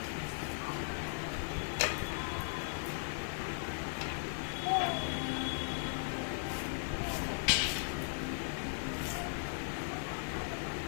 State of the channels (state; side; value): silent; right; digital silence